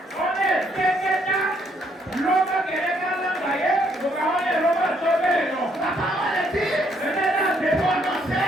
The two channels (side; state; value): both; normal; correlation 0.70